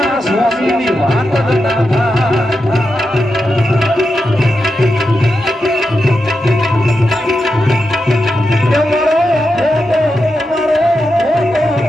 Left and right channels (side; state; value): both; normal; correlation 0.88